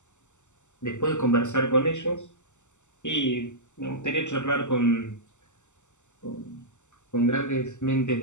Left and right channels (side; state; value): right; late; 0.84 ms